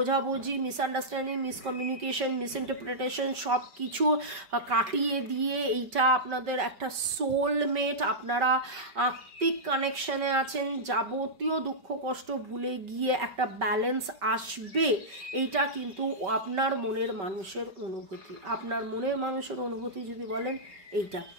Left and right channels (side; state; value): left; late; 5.2 ms